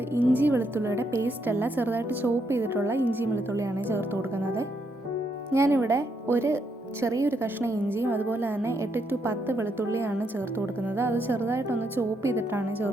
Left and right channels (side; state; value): both; normal; correlation 0.77